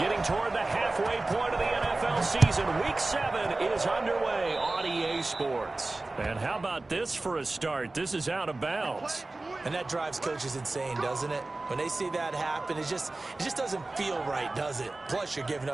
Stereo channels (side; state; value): left; quieter; 3.1 dB